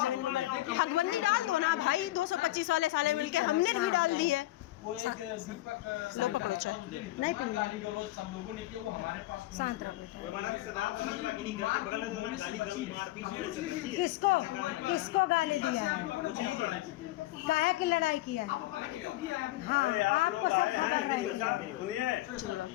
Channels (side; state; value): right; quieter; 17.1 dB